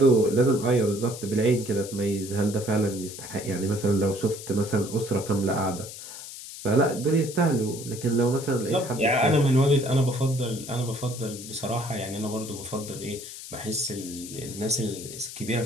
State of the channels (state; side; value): noise; left; hiss, 12 dB below the sound